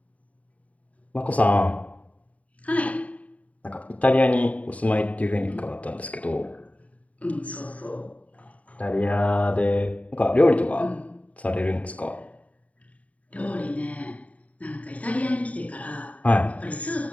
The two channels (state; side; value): late; right; 0.068 ms